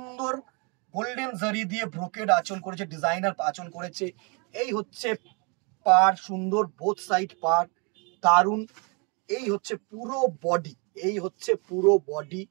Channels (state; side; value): quieter; left; 32.9 dB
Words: গোল্ডেন জারি দিয়ে ব্রোকেড আঁচল করেছে, ডিজাইনার আঁচল করেছে। এই হচ্ছে পার, সুন্দর বোথ সাইড পার, দারুন। এই হচ্ছে পুরো বডি, এই হচ্ছে পুরো বডি,